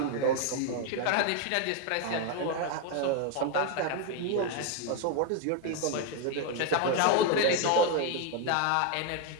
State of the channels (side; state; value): both; different; correlation 0.01